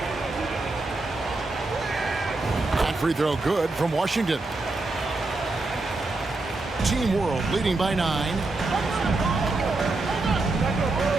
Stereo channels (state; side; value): quieter; left; 3.2 dB